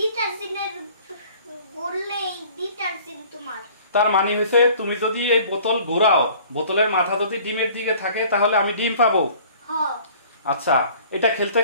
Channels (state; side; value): inverted; both; correlation -0.50